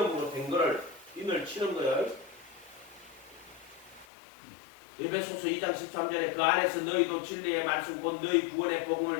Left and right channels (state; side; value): drops out; right; at 4.0 s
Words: 된 거를 인을 치는 거예요. 에베소서 2장 13절에 그 안에서 너희도 진리의 말씀 곧 너희 구원의